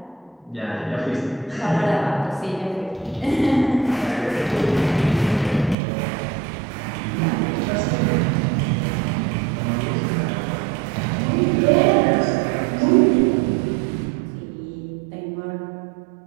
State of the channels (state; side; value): drops out; left; at 5.8 s